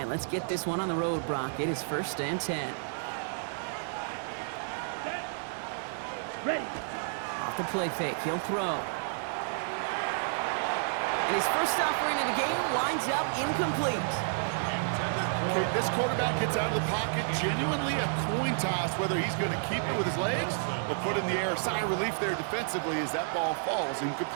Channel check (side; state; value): left; silent; digital silence